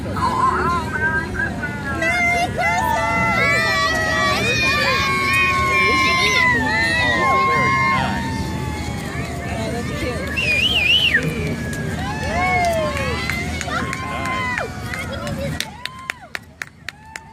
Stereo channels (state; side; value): identical; both; correlation 1.00